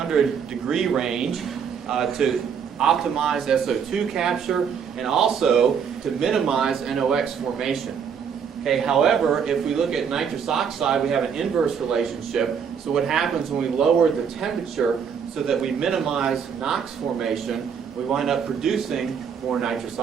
degree range to optimize SO2 capture and also to minimize NOx formation. Okay, however, if we look at nitrous oxide, we have an inverse relationship. So what happens when we lower the temperature so that we minimize NOx formation, we wind up producing more nitrous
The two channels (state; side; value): quieter; left; 7.1 dB